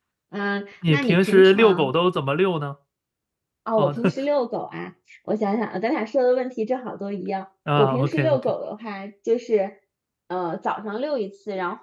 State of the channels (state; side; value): identical; both; correlation 1.00